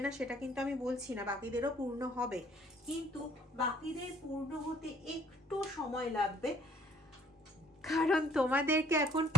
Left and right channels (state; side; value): normal; both; correlation 0.61